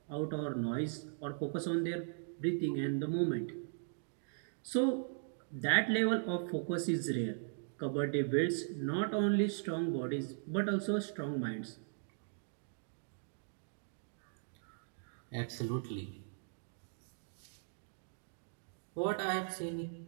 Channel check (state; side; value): silent; left; digital silence